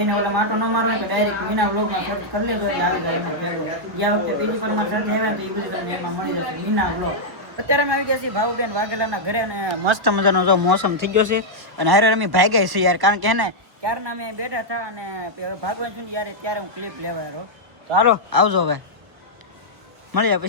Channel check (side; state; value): left; late; 1.1 ms